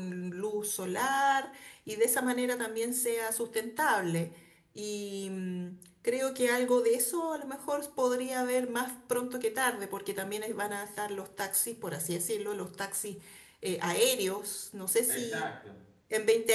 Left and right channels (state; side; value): identical; both; correlation 1.00